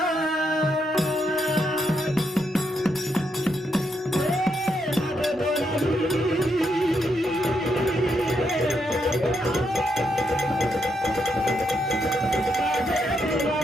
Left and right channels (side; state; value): both; normal; correlation 0.79